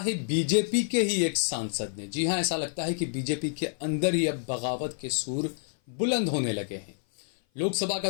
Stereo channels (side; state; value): right; silent; 55 dB below the other